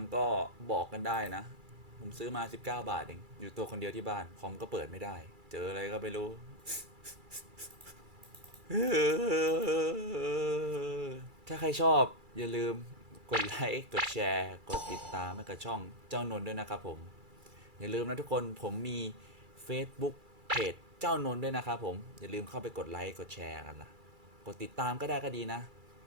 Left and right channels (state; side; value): late; left; 2.3 ms